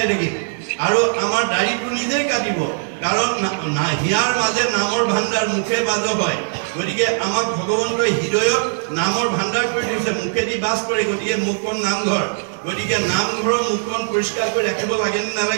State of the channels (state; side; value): silent; left; digital silence